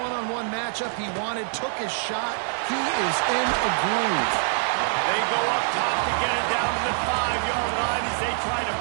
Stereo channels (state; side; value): silent; left; digital silence